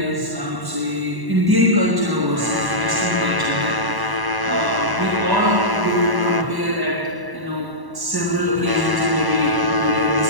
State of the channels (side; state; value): left; late; 1.0 ms